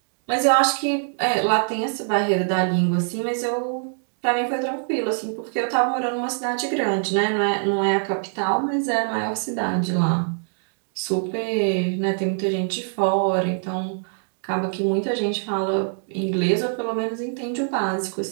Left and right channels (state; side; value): silent; left; digital silence